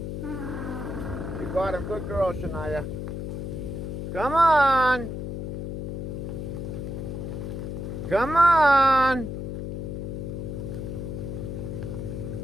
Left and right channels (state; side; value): noise; left; hum, 5 dB below the sound